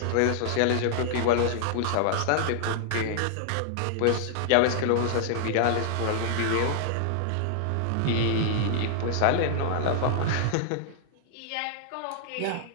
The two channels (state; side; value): different; both; correlation -0.01